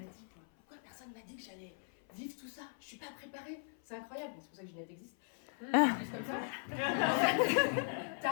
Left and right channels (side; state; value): right; silent; 52 dB below the other